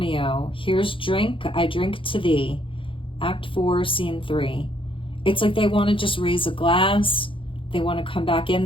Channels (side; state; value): right; late; 0.25 ms